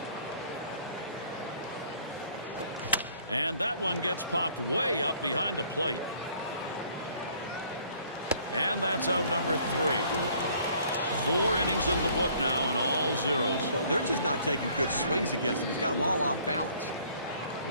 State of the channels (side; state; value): both; inverted; correlation -0.59